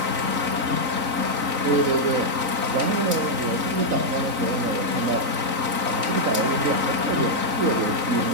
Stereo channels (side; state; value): left; late; 3.9 ms